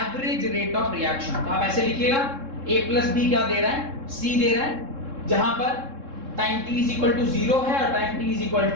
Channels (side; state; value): left; late; 3.7 ms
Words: rate of reaction। तो आप ऐसे लिखिएगा A plus B क्या दे रहा है? C दे रहा है, जहां पर time t is equal to 0 है और time t is equal